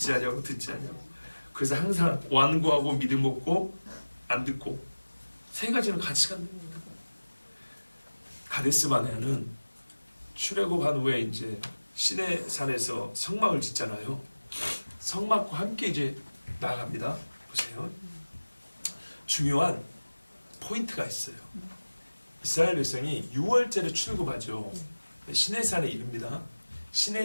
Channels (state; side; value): inverted; both; correlation -1.00